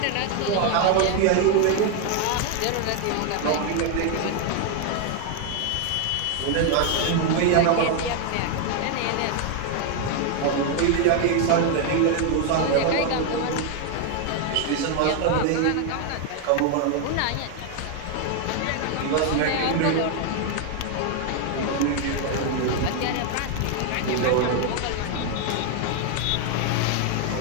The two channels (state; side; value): different; both; correlation 0.01